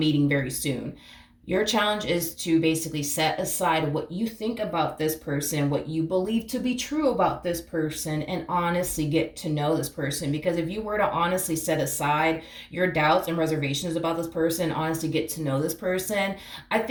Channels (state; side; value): identical; both; correlation 1.00